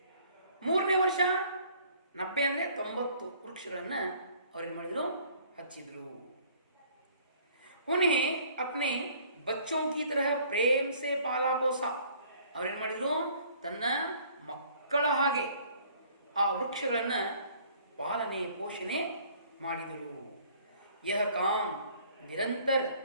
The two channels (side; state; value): both; inverted; correlation -0.57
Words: ಮೂರನೇ ವರ್ಷ 90 ಅಂದರೆ 90 ವೃಕ್ಷಗಳನ್ನ ಅವ್ರೇನು ಮಾಡಿದ್ರು, ಹಚ್ಚಿದ್ರು. उन्हें अपने बच्चों की तरह प्रेम से पाला पोसा. ಅವ್ರೇನು ಮಾಡಿದ್ರು, ತನ್ನ ಮಕ್ಕಳ ಹಾಗೆ ಆ ವೃಕ್ಷಗಳನ್ನ ಪಾಲನೆ ಪೋಷಣೆ ಮಾಡಿದರು. यह काम निरंतर